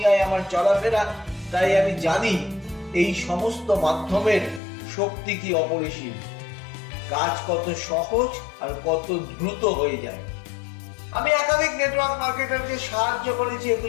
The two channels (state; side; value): drops out; right; at 4.6 s